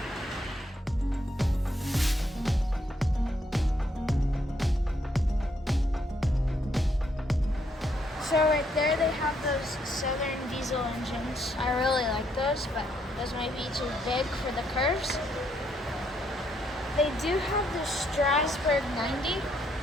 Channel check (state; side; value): normal; both; correlation 0.73